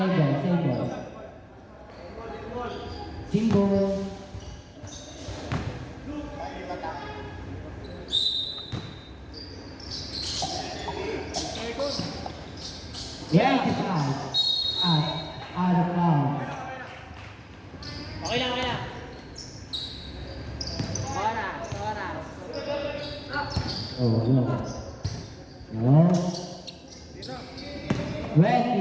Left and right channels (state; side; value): identical; both; correlation 1.00